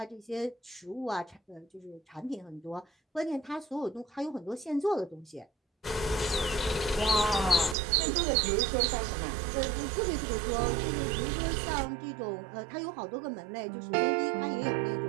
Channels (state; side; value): drops out; left; at 7.8 s